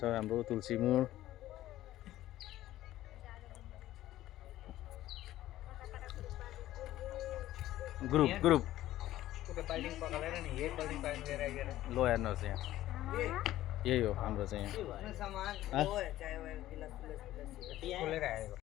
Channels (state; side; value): quieter; right; 14.5 dB